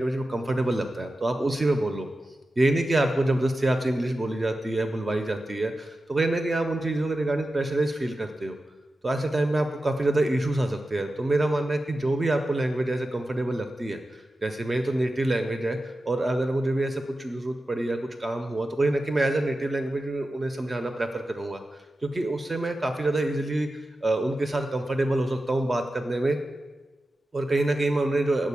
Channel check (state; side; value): normal; both; correlation 0.93